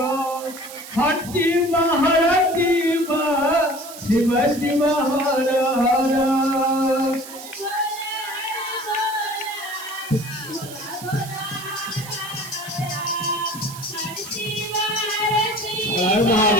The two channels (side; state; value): right; noise; hiss, 14 dB below the sound